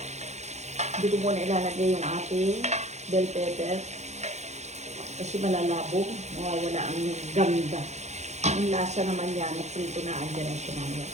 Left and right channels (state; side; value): late; left; 0.33 ms